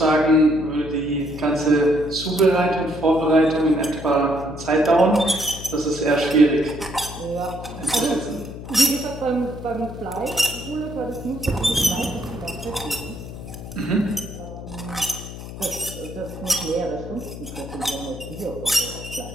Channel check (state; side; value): noise; left; hum, 11 dB below the sound